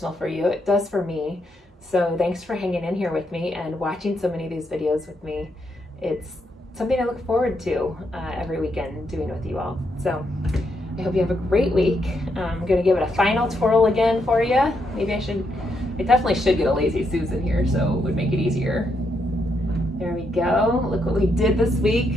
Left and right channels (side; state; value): both; normal; correlation 0.79